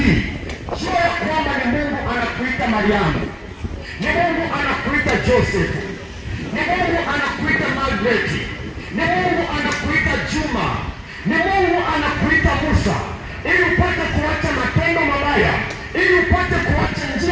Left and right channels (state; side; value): identical; both; correlation 1.00